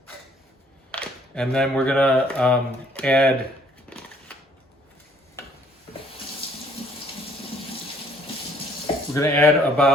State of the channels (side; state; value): both; normal; correlation 0.62